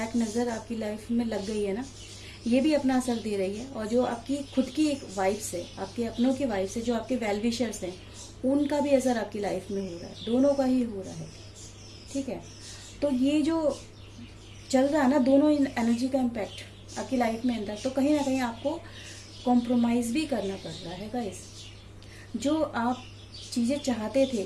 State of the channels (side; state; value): both; identical; correlation 1.00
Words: नज़र आपकी लाइफ में लग गई है ना, ये भी अपना असर दे रही है। और जो आपकी खुद की एक वाइब्स है, आपके अपनों की वाइब्स है, जो आपके वेल विशर्स हैं, उनका भी असर आपकी लाइफ में हो रहा है, दोनों का ही हो रहा है। ठीक है, तो ये जो चल रहा है ना, दोनों एनर्जी का इम्पैक्ट आपकी लाइफ में अंदर, तो कहीं ना कहीं आपको कॉम्प्रोमाइज़ भी करना पड़ रहा है गाइस। जो आप चीज़ें चाहते थे,